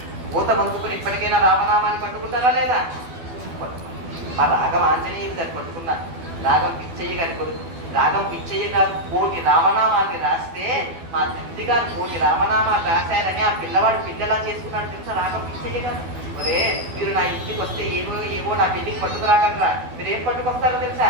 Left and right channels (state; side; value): late; left; 12 ms